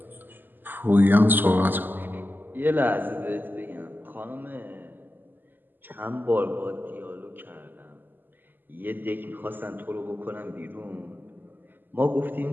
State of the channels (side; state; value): left; late; 0.090 ms